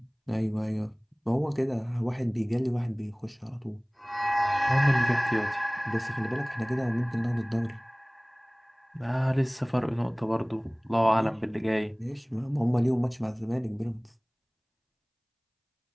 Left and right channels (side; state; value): both; identical; correlation 1.00